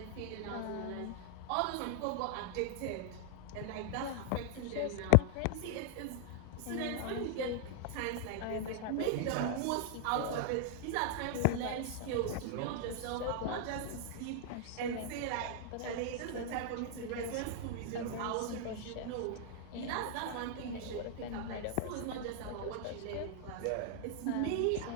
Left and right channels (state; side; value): different; both; correlation -0.01